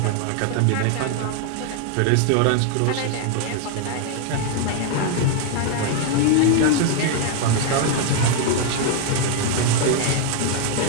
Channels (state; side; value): different; both; correlation 0.00